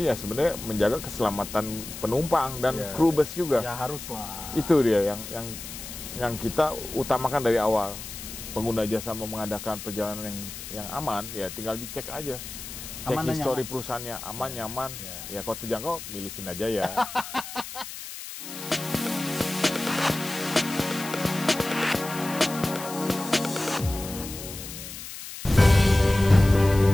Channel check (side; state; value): left; noise; hiss, 10 dB below the sound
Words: ya sebenarnya menjaga keselamatan penumpang dan kru bus juga. Ya haruslah. Itu dia yang kita utamakan dari awal. Pengguna jasa mau mengadakan perjalanan yang aman, ya tinggal dicek aja. Cek Aman dan histori nyaman. perusahaannya, aman, nyaman. Ya kalau terjangkau, milih Sinarjaya.